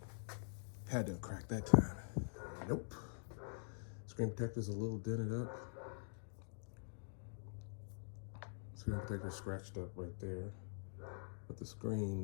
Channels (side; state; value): right; silent; digital silence